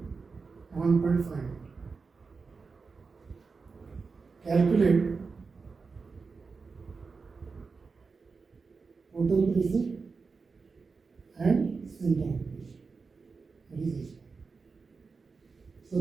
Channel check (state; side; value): quieter; left; 4.7 dB